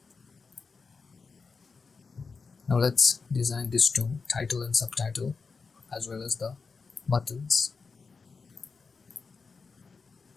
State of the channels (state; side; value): quieter; right; 4.8 dB